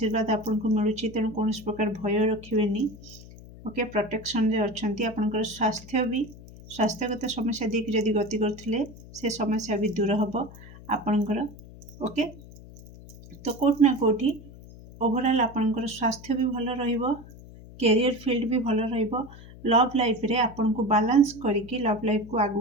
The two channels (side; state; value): left; noise; hum, 18 dB below the sound